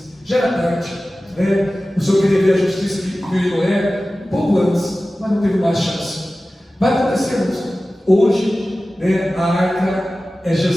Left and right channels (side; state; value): both; normal; correlation 0.96